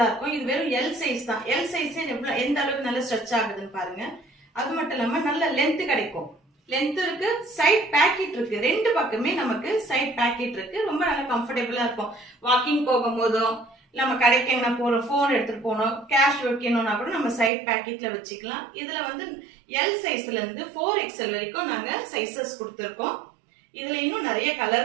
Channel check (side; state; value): left; drops out; at 17.5 s